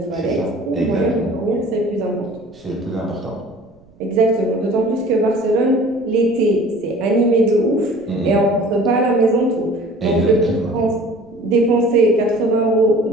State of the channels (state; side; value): noise; right; rumble, 29 dB below the sound